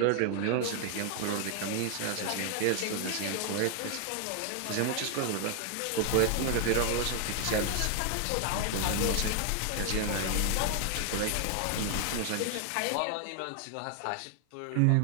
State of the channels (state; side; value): different; both; correlation 0.00